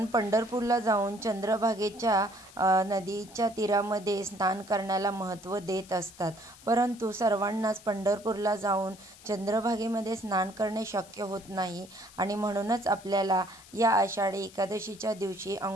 पंढरपूरला जाऊन चंद्रभागेच्या नदीच्या तीरामध्ये स्नान करण्याला महत्त्व देत असतात. परंतु सर्वांनाच पंढरपूरला जाऊन चंद्रभागेमध्ये स्नान करणे शक्य होत नाही आणि म्हणूनच आपल्याला या आषाढी एकादशीच्या दिवशी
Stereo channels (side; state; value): left; noise; hiss, 21 dB below the sound